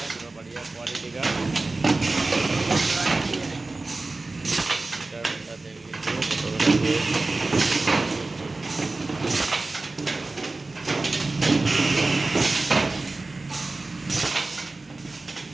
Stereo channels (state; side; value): quieter; left; 3.3 dB